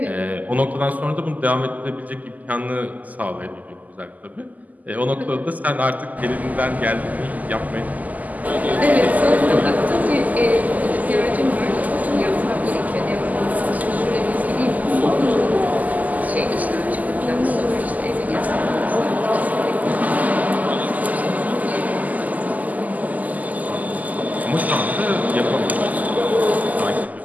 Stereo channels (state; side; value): late; left; 0.079 ms